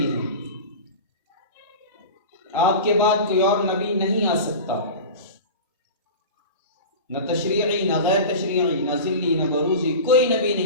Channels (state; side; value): inverted; both; correlation -0.31